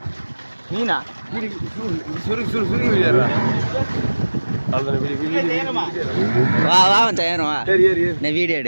மீனா சுருக்கி விளையாடுறா. வா வா மச்சான் ஏறும் வா. சரி சரி நான் வீடியோ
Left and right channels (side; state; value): both; inverted; correlation -1.00